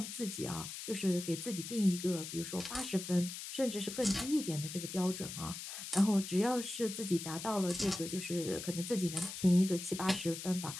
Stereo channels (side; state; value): left; noise; hiss, 8 dB below the sound